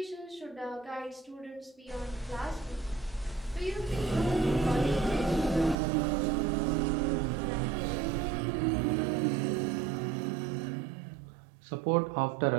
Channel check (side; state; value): left; drops out; at 5.8 s